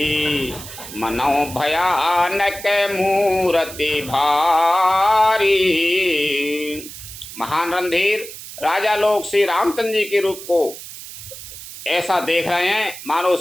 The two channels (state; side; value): noise; right; hiss, 13 dB below the sound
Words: मनौ भयानक मूर्ति भारी। महान रणधीर राजा लोग श्री रामचंद्र जी के रूप को ऐसा देख रहे हैं मानो